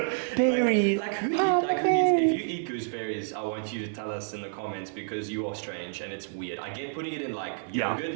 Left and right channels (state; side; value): silent; left; digital silence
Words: Berries. Who eats? If you eat gooseberries, I want you to tell us in the comments, because you are strange and it's weird. I get putting it in like yogurt,